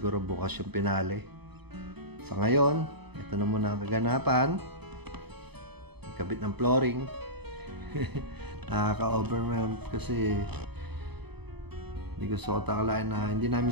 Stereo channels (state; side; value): late; left; 0.98 ms